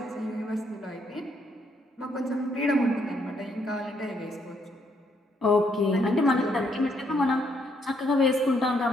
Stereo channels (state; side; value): normal; both; correlation 0.72